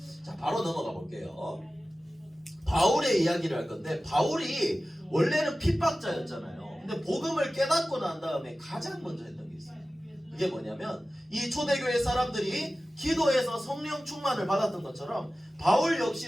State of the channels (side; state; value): both; normal; correlation 0.95